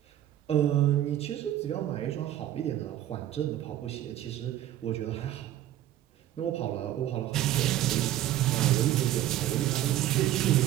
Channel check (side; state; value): left; quieter; 12.8 dB